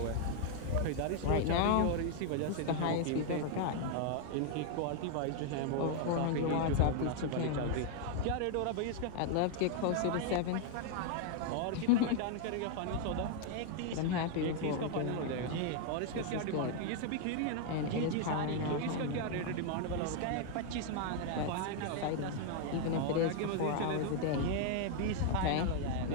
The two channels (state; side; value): different; both; correlation 0.00